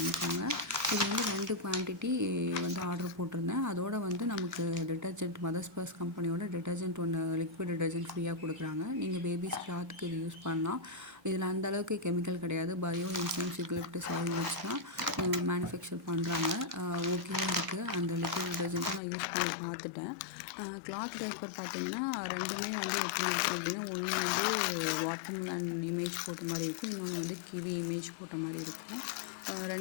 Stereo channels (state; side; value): drops out; right; at 19.0 s